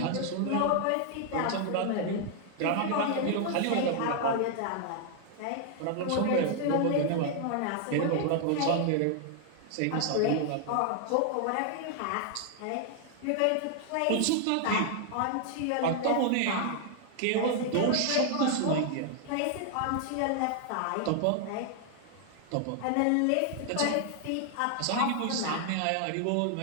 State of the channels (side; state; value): both; different; correlation 0.00